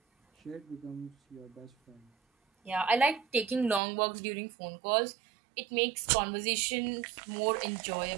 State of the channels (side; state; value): left; drops out; at 3.8 s